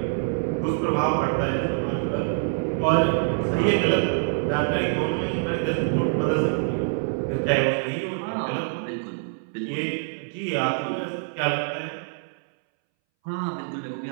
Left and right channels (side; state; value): left; silent; 62 dB below the other